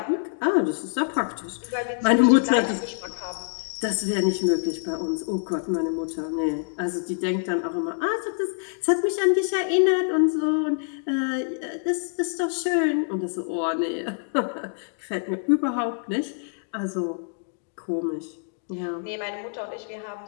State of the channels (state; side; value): silent; right; digital silence